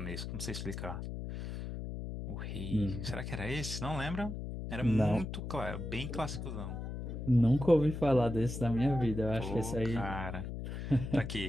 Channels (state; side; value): noise; left; hum, 6 dB below the sound